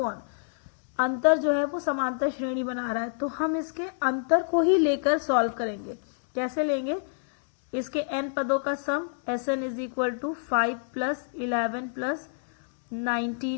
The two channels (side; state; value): right; silent; 60 dB below the other